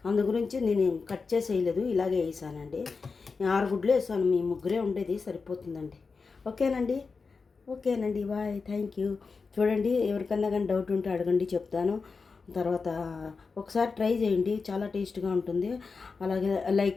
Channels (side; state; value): right; quieter; 4.7 dB